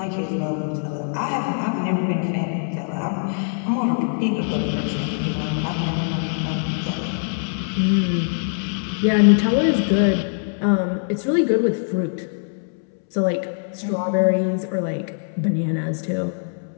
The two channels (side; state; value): right; silent; 64 dB below the other